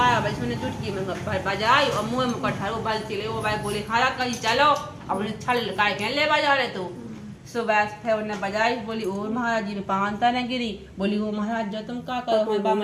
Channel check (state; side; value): identical; both; correlation 1.00